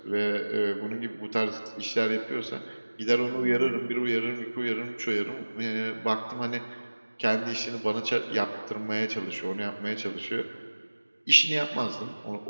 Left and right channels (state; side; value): inverted; both; correlation -1.00